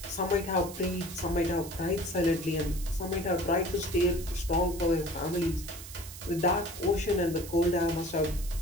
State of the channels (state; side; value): noise; right; hiss, 13 dB below the sound